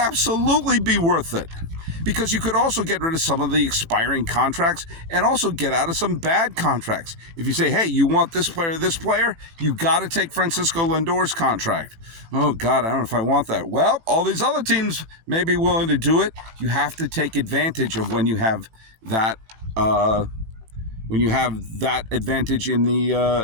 be worth it, because you could also get rid of some of the expiring contracts and also get out of some bad contracts. If you say, hey, you want this player, you got to take Francisco Lindor's contract. Oh, God, I don't know if I want that. Well, all these other teams may be willing to do it. You have to take advantage of when you have that advantage in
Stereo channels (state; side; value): late; left; 18 ms